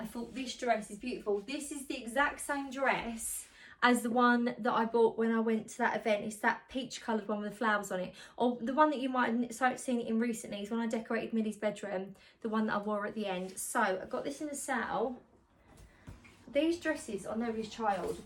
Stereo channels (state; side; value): identical; both; correlation 1.00